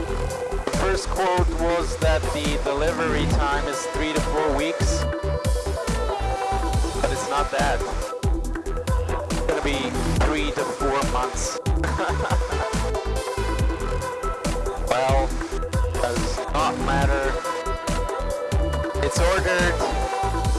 The first quote was that the delivery time is 3 to 4 weeks. But it's not that. It's gonna be 3 to 4 months. Well, does not matter. It's ordered.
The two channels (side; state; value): both; identical; correlation 1.00